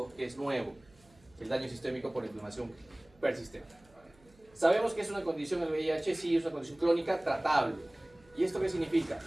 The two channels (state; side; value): noise; right; hum, 29 dB below the sound